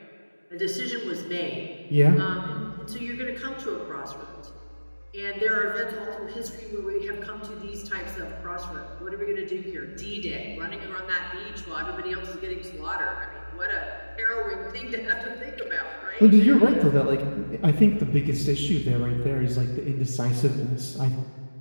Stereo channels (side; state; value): both; inverted; correlation -1.00